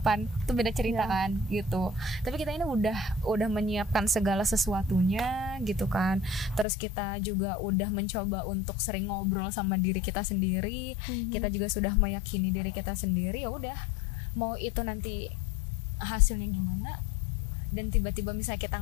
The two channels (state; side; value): drops out; right; at 6.7 s